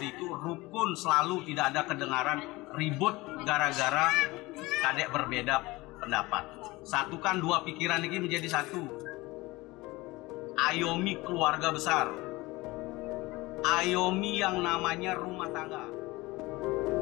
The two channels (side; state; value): right; quieter; 21.3 dB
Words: itu rukun, selalu tidak ada kedengaran ribut gara-gara kadek berbeda pendapat. Satukan dua pikiran ini menjadi satu. Ayomi keluarga besar. Ayomi yang namanya rumah tangga.